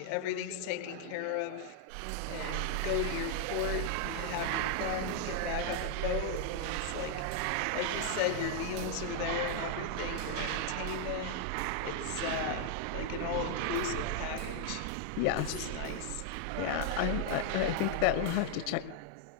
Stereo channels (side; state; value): both; different; correlation 0.00